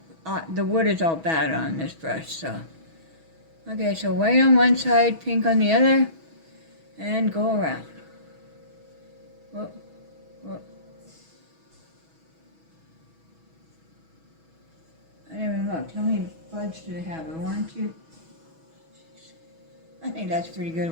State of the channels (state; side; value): late; left; 6.2 ms